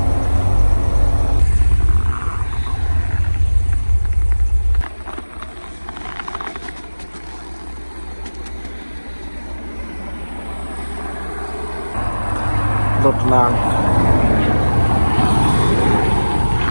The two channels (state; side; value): inverted; both; correlation -1.00